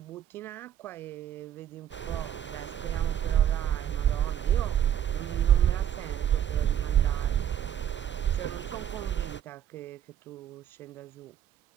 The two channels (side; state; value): left; quieter; 10.2 dB